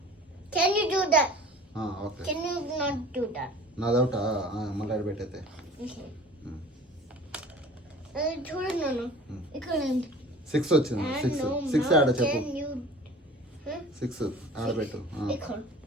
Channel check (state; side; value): normal; both; correlation 0.45